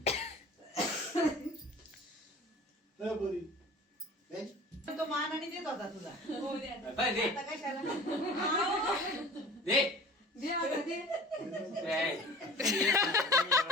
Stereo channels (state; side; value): normal; both; correlation 0.42